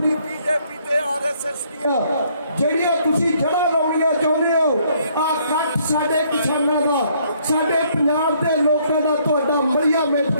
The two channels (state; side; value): inverted; both; correlation -0.66